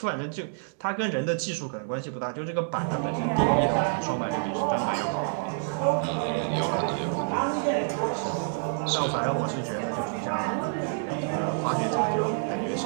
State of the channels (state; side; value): silent; left; digital silence